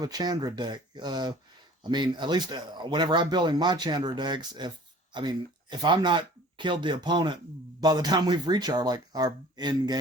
a Chandra deck. I mean, at least whenever I'm building my Chandra decks, if I'm not killed the opponent by the time we've reached our end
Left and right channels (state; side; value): normal; both; correlation 0.48